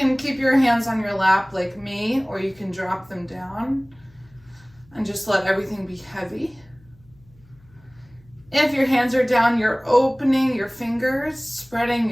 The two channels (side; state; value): left; noise; hum, 29 dB below the sound